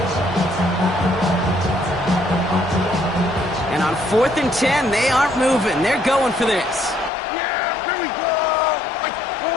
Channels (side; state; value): right; drops out; at 7.1 s